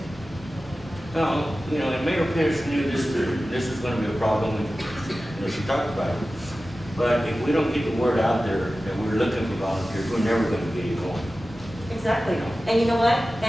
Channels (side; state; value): both; normal; correlation 0.95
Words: No, you know, and Mayor Pierce knew this was gonna be a problem, and, you know, she talked about it. But if we don't get the word out there that we're looking for volunteers, we're never gonna get it going. Exactly. And you know what?